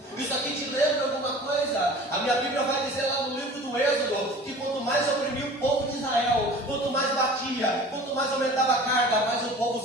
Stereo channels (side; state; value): both; normal; correlation 0.42